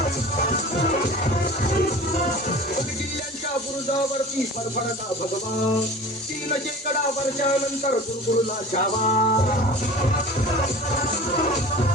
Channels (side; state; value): both; normal; correlation 0.39